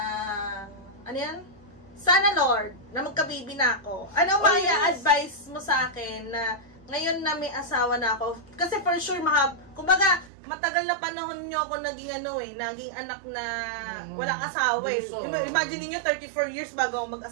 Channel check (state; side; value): drops out; left; at 10.3 s